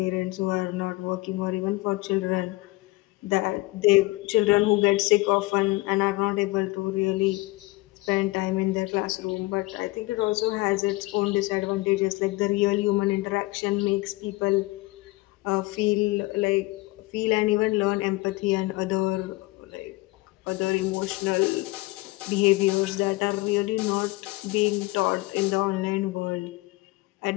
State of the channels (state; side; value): quieter; right; 21.4 dB